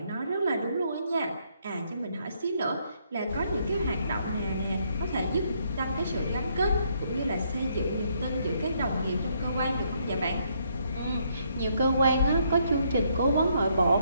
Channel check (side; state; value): both; inverted; correlation -0.72